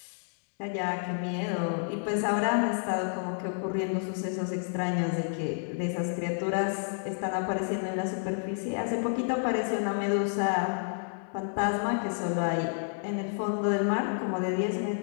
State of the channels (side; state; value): right; silent; digital silence